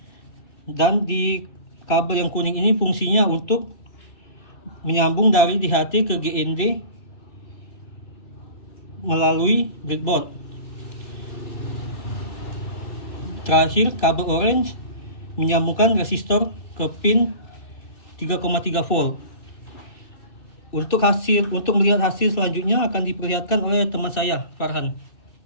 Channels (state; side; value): late; right; 2.9 ms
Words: Dan di kabel yang kuning ini fungsinya untuk menyambung dari DHT ke GND melalui breadboard. Terakhir, kabel orange menyambungkan resistor ke pin 3,3 volt. Untuk melihat hasil selanjutnya akan diperlihatkan oleh teman saya, Farhan.